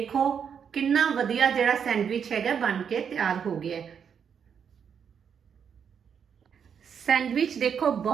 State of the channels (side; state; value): left; quieter; 7.4 dB